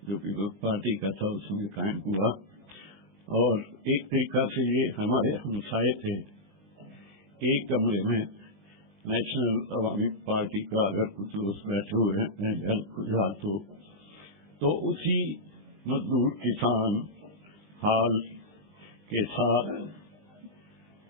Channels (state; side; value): late; left; 19 ms